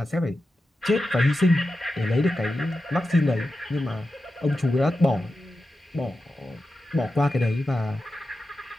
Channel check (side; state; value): both; normal; correlation 0.91